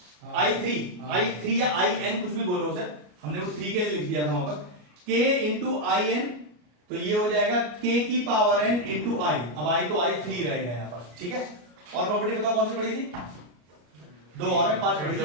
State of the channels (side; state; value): left; late; 33 ms